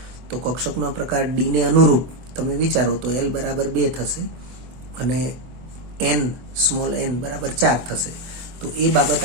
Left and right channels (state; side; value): late; left; 24 ms